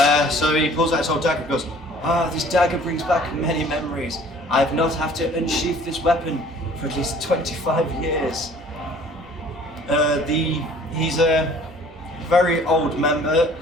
So he pulls out his old dagger and goes, this dagger brings back many memories. I have not had to unsheath this weapon for at least 25 years. He's a very old member.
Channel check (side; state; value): both; normal; correlation 0.52